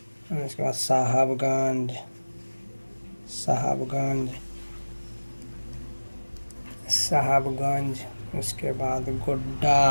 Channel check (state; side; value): inverted; both; correlation -1.00